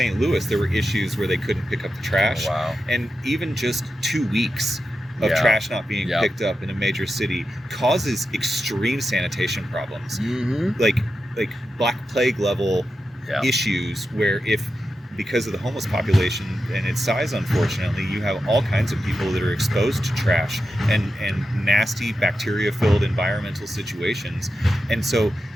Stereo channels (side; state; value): both; normal; correlation 0.89